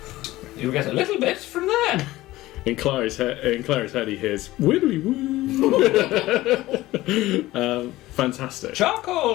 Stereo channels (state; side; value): quieter; right; 17.3 dB